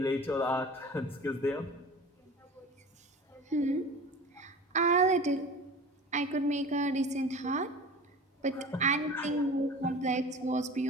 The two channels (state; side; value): normal; both; correlation 0.38